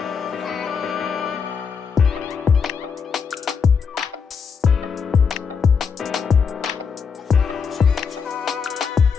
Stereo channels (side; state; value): right; quieter; 6.0 dB